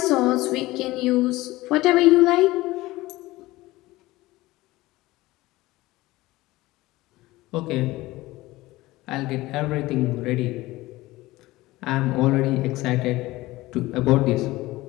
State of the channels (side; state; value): right; quieter; 18.8 dB